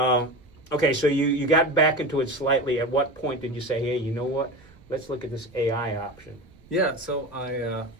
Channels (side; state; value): right; noise; rumble, 26 dB below the sound